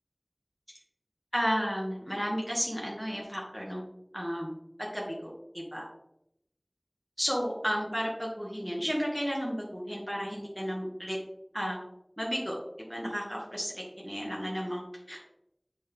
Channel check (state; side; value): identical; both; correlation 1.00